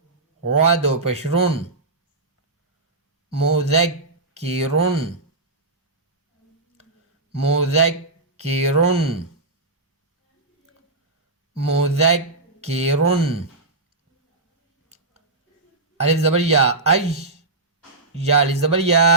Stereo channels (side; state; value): left; quieter; 3.4 dB